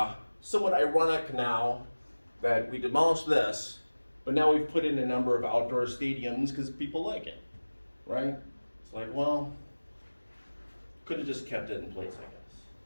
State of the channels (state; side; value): inverted; both; correlation -1.00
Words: Somewhat ironic now that we demolished this, but now we've put in a number of outdoor stadiums because people like it, right? It's like, well, could have just kept it in place,